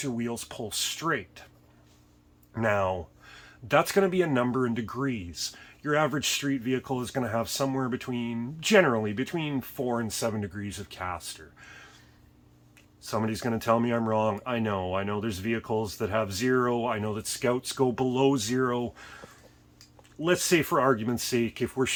your wheels pull straight. Now, that's going to be a number in degrees. Your average street vehicle is going to have somewhere generally between 4 and 7 degrees of caster. Somebody's going to tell me I'm wrong. I know there's vehicles that have 0. I know that Scouts go below 0. Let's say, for argument's sake, if we're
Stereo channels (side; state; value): both; identical; correlation 1.00